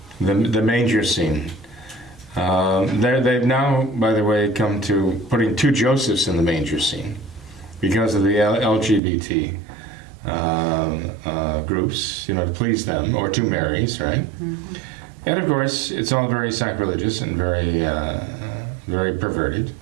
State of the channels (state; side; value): drops out; left; at 9.0 s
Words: manger scene. They've now, by the way, come to putting 2 Josephs in the manger scene because of the LGBT groups, to please them, or 2 Marys, right? Mm-hmm. And of course, it's all very sacrilegious and very perverted.